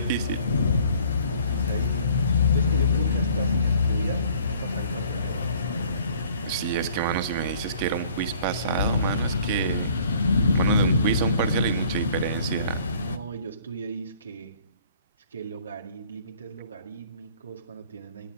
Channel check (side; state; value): both; inverted; correlation -0.55